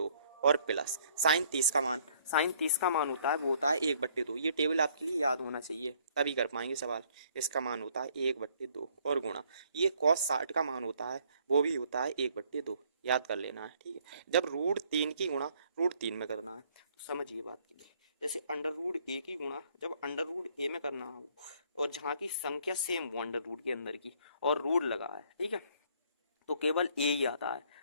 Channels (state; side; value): inverted; both; correlation -0.63